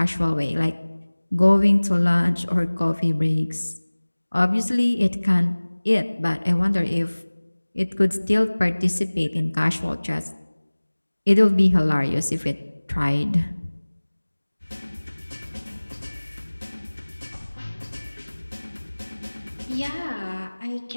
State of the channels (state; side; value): inverted; both; correlation -1.00